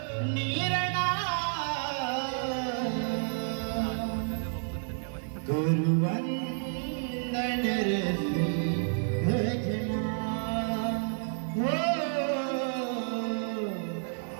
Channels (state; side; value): silent; left; digital silence